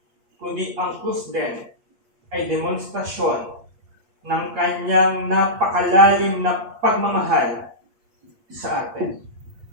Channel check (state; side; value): late; left; 8.5 ms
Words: kundi ang krus din ay demonstrasyon ng Kanyang napakalalim na pagmamahal sa atin.